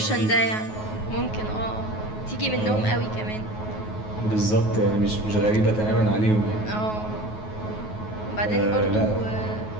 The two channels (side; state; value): right; late; 9.4 ms